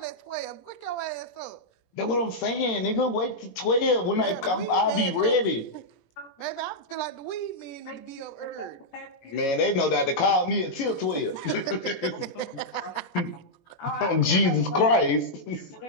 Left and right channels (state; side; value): late; right; 18 ms